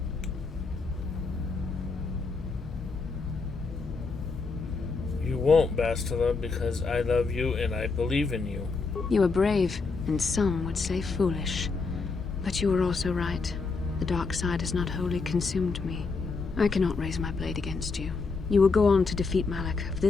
You won't, Bastila, because I love you and I believe in you. You are brave, and some would say foolish. But you are also right. The dark side has not wholly consumed me. I cannot raise my blade against you. You will go on to defeat Malak. Of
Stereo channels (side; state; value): right; quieter; 4.3 dB